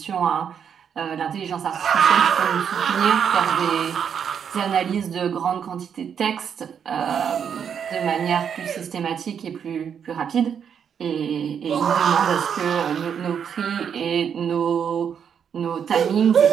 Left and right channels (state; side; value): quieter; left; 7.7 dB